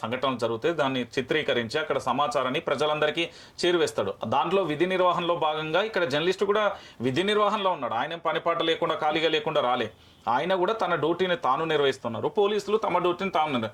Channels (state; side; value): identical; both; correlation 1.00